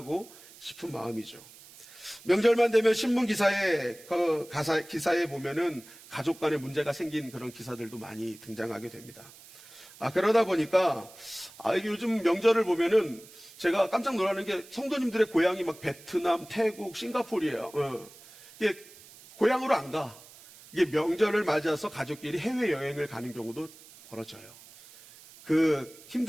싶은 마음이죠. 명절만 되면 신문 기사에 기사에 보면은 가족 간에 문제가 생긴 그런 기사들도 많이 등장하게 됩니다. 그러다 보니까 이게 요즘 명절을 보면은 제가 깜짝 놀라는 게 성도님들의 고향이 막 베트남, 태국, 싱가포르예요. 이게 고향으로 안 가. 이게 명절을 맞아서 가족끼리 해외 여행을 가는 경우도 벌어져요. 그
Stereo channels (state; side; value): noise; right; hiss, 21 dB below the sound